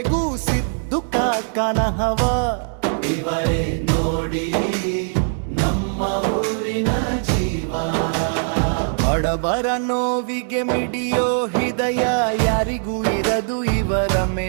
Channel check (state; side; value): silent; left; digital silence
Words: ಸಿದ್ದು ಕಾಕನ ಹವ, ಇವರೇ ನೋಡಿ ನಮ್ಮ ಊರಿನ ಜೀವ. ಬಡವರ ನೋವಿಗೆ ಮಿಡಿಯೋ ಹೃದಯ, ಯಾರಿಗೂ ಇರದು ಇವರ